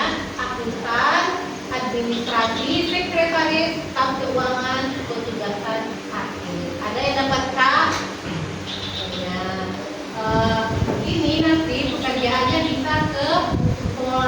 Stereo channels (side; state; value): both; identical; correlation 1.00